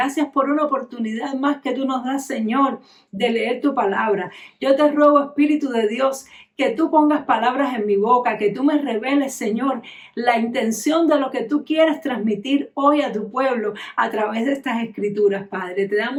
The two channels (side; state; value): both; identical; correlation 1.00